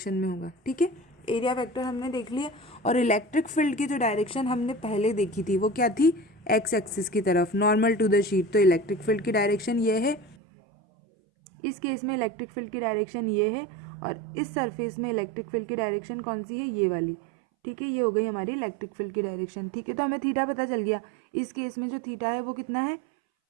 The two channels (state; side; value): drops out; left; at 10.4 s